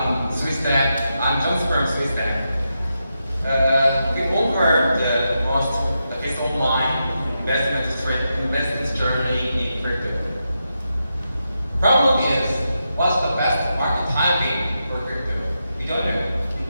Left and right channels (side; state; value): both; inverted; correlation -0.86